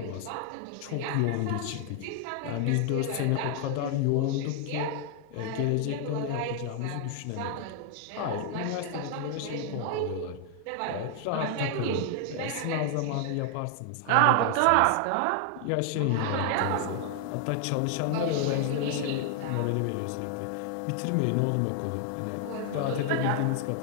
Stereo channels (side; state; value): both; different; correlation 0.00